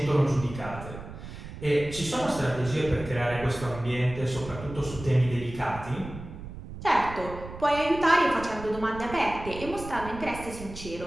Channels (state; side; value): noise; right; rumble, 12 dB below the sound